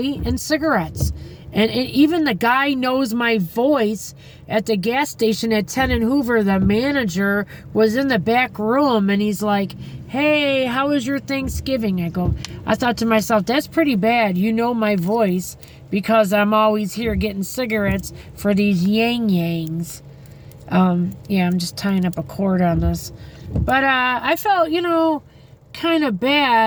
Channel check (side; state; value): both; identical; correlation 1.00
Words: and cigarettes. And even the guy knows my voice at the gas station at 10 and Hoover. The manager was in the back room, and he's like, hey, how was your Thanksgiving? I thought to myself, that's pretty bad. You know my voice because I'm always here getting cigarettes for these yang-yangs. Yeah, I'm just tying up a cord on this. But I felt, kind of